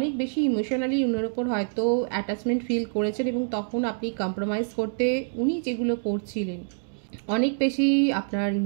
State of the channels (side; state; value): left; silent; digital silence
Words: বেশি ইমোশনালি উনার উপর হয়তো অ্যাটাচমেন্ট ফিল করেছেন এবং তখন আপনি কম্প্রোমাইজ করতে উনি যেগুলো করছিলেন, অনেক বেশি আপনার